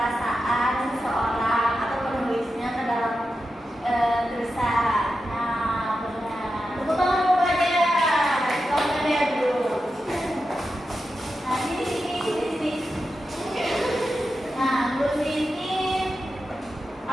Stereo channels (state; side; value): normal; both; correlation 0.90